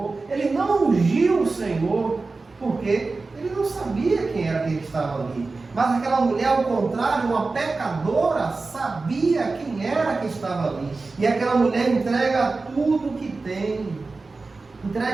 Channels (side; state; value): left; quieter; 3.8 dB